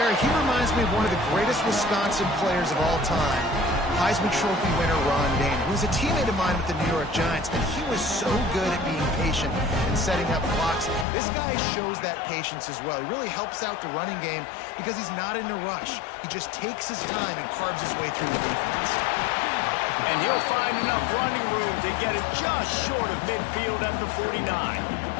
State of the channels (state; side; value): drops out; right; at 11.1 s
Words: He reminds me of one of the greatest Wisconsin players of all time. Heisman Trophy winner Ron Daniel, who was a teammate of mine with the New York Giants, and he was so good at being patient and setting up blocks. This guy shows that patience as well. He really helps out the running game because he's not in a rush. He just takes his time and carves his way through the defense. And he'll find enough running room to get it just short of midfield at the 49.